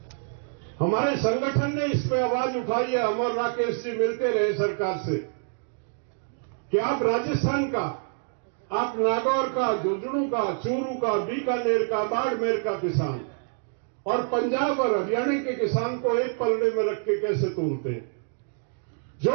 हमारे संगठन ने इस पे आवाज उठाई है। अमर राकेश जी मिलते रहे सरकार से कि आप राजस्थान का, आप नागौर का, झुंझुनू का, चूरू का, बीकानेर का, बाड़मेर का किसान और पंजाब और हरियाणा के किसान को एक पल्ले में रख के कैसे तोलते हैं?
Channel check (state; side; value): silent; left; 60 dB below the other